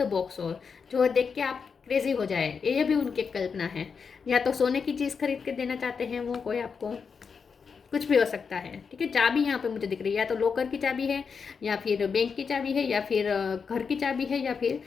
बॉक्स हो, जो देख के आप क्रेजी हो जाए, ये भी उनकी कल्पना है। या तो सोने की चीज़ खरीद के देना चाहते हैं वो कोई आपको, कुछ भी हो सकता है। ठीक है, चाबी यहाँ पे मुझे दिख रही है, या तो लॉकर की चाबी है, या फिर बैंक की चाबी है, या फिर घर की चाबी है, या फिर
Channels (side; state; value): right; quieter; 5.8 dB